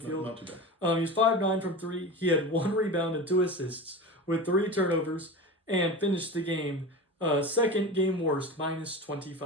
Not too bad. He was 5-9 from 3. He had 1 rebound and 2 assists with 3 turnovers and finished the game second game worst, minus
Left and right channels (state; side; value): normal; both; correlation 0.29